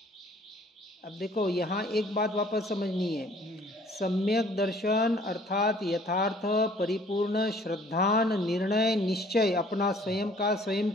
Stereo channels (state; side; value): normal; both; correlation 0.56